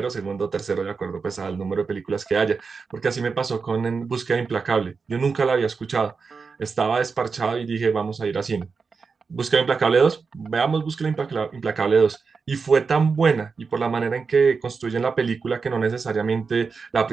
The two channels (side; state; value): left; quieter; 5.0 dB